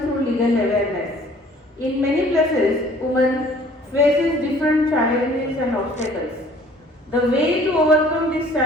through legal awareness. In many places, women faces different challenges and obstacles. The way to overcome these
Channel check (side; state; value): both; normal; correlation 0.54